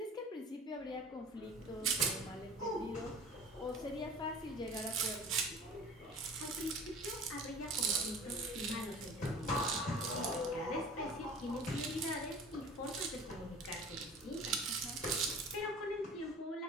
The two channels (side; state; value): both; normal; correlation 0.42